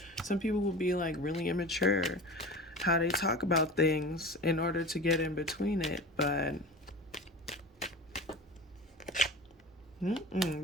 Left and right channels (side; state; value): both; normal; correlation 0.33